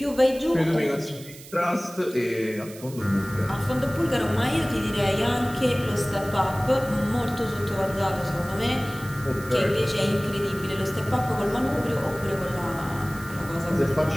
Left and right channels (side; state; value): right; noise; hiss, 18 dB below the sound